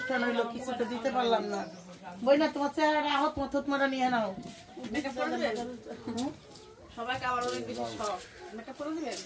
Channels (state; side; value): identical; both; correlation 1.00